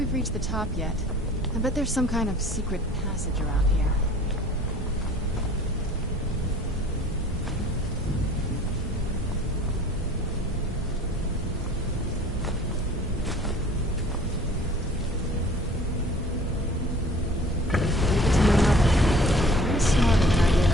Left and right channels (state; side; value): normal; both; correlation 0.50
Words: reached the top yet. I bet there's some kind of secret passage around here. Leave it to my mother. She's smarter than I gave